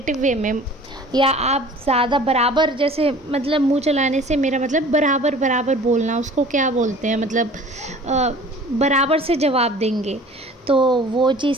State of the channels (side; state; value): both; normal; correlation 0.46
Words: वे में, या आप ज़्यादा बराबर, जैसे मतलब मुंह चलाने से मेरा मतलब बराबर बराबर बोलना, उसको क्या बोलते हैं, मतलब बराबर से जवाब देंगे, तो वो चीज़